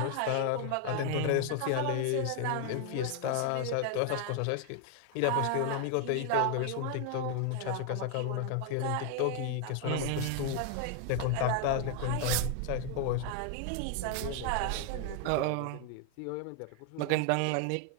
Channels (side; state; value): both; different; correlation 0.00